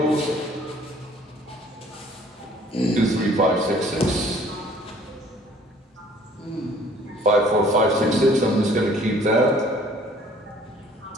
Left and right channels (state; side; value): normal; both; correlation 0.56